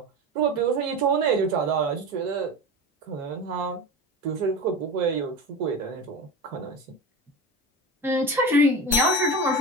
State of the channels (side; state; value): both; normal; correlation 0.28